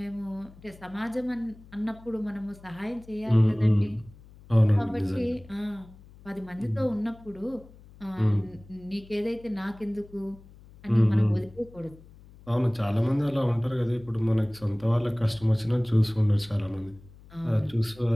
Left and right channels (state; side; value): noise; left; hum, 22 dB below the sound